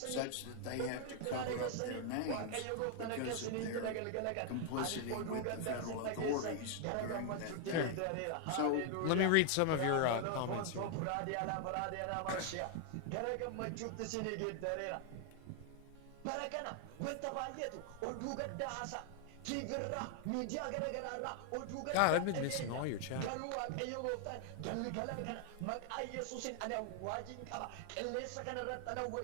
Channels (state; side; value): different; both; correlation 0.00